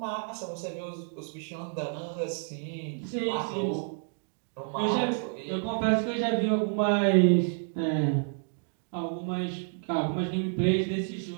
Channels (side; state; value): left; silent; digital silence